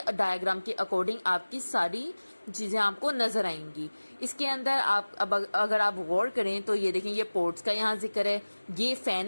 डायग्राम के अकॉर्डिंग आपकी सारी चीजें आपको नजर आएंगी। इसके अंदर आप अब अगर आप गौर करें तो ये देखें, ये पोर्ट्स का यहाँ जिक्र है, ये फैन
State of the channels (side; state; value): both; inverted; correlation -1.00